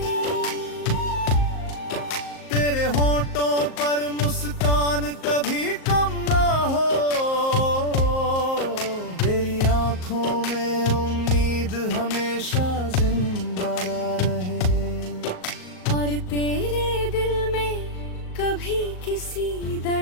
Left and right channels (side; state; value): right; late; 38 ms